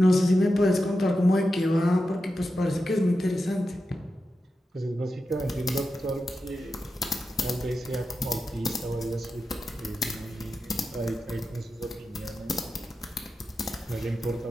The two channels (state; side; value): normal; both; correlation 0.90